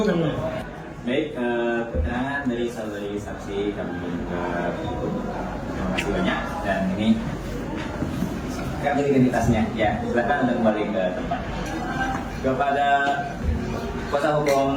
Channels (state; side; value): identical; both; correlation 1.00